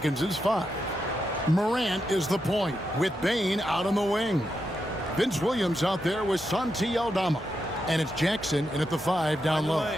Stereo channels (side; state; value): both; normal; correlation 0.85